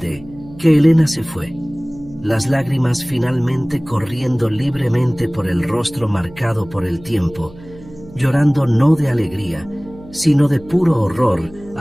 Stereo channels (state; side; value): noise; right; hum, 20 dB below the sound